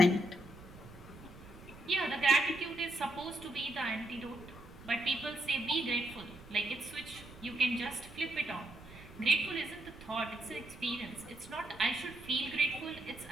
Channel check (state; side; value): noise; right; rumble, 18 dB below the sound